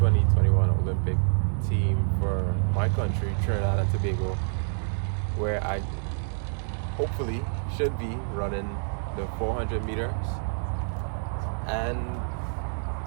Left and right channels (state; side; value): silent; left; digital silence